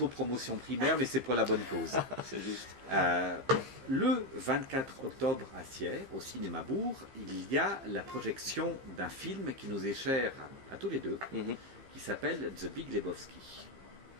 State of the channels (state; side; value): late; left; 15 ms